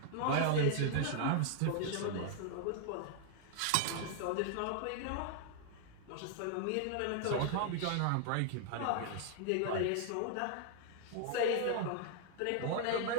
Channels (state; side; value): different; both; correlation 0.00